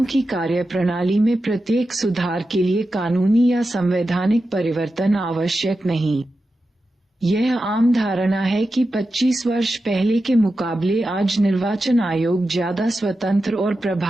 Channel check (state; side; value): normal; both; correlation 0.91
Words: की कार्यप्रणाली में प्रत्येक सुधार के लिए कानूनी या संवैधानिक परिवर्तन आवश्यक नहीं। यह आम धारणा है कि 25 वर्ष पहले के मुकाबले आज निर्वाचन आयोग ज्यादा स्वतंत्र और